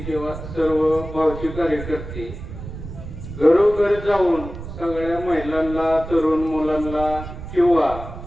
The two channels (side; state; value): right; noise; rumble, 11 dB below the sound